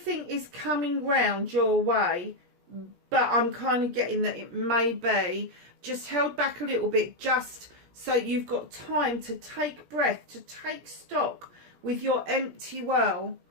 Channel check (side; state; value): left; late; 17 ms